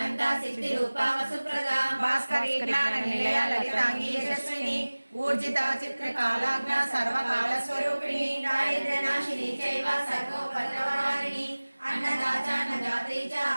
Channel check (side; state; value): both; inverted; correlation -1.00